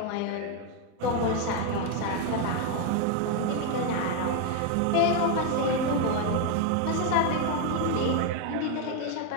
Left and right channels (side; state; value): both; different; correlation 0.01